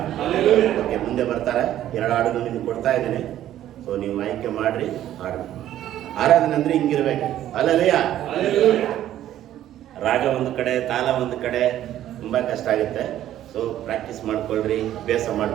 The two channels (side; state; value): left; quieter; 12.3 dB